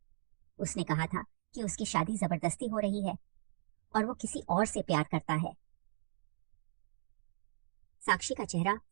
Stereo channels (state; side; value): silent; left; digital silence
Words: उसने कहा था कि उसकी शादी जबरदस्ती हो रही है और वो किसी और से प्यार करता है। साक्षी का चेहरा